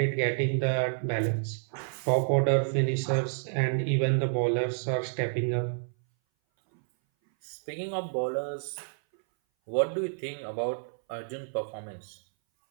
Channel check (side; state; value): left; silent; 58 dB below the other